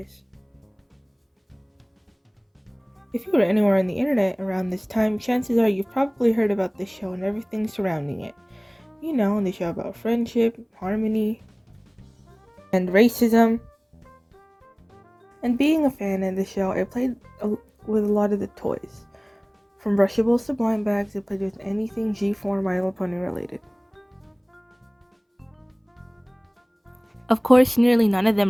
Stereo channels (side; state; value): both; identical; correlation 1.00